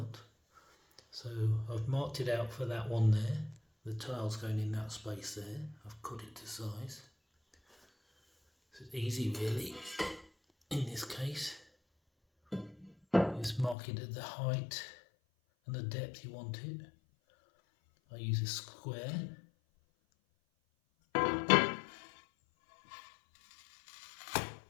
So I've marked it out for that one there. The tile's going in that space there. I've cut it to size. So it's easy really in this case. Just mark it at the height and the depth you want it. I use a square. I've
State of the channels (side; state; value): right; drops out; at 13.8 s